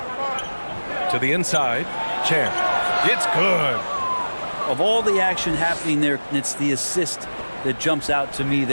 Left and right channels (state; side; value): inverted; both; correlation -1.00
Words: To the inside, Champ. It's good. Of all the action happening there, it's the assist that jumps out to me